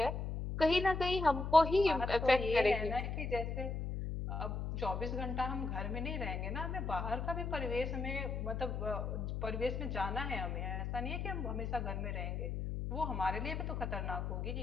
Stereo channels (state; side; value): noise; left; hum, 3 dB below the sound